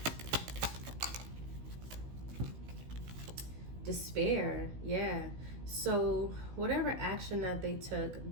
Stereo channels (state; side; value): late; left; 16 ms